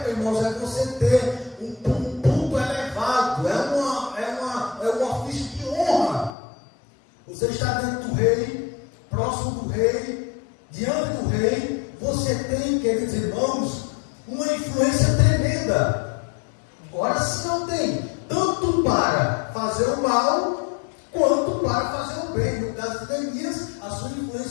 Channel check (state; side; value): drops out; right; at 6.4 s